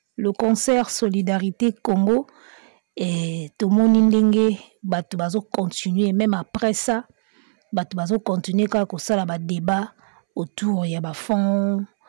le concert Solidarité Congo et tout le monde va continuer, même après ça, va continuer quand ça la débat autour il y a fond,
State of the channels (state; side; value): silent; left; 65 dB below the other